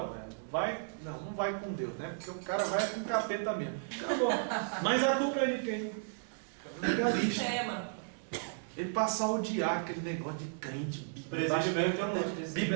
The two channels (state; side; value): silent; left; digital silence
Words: velho. Não vai com Deus, né? Porque o cara vai com o capeta mesmo. Acabou. Mas a culpa é de quem? Legalista. Ele passa a odiar aquele negócio de crente,